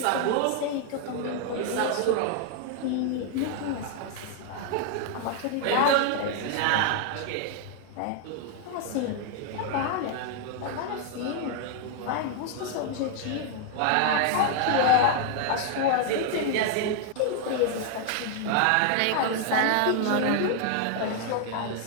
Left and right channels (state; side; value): different; both; correlation 0.00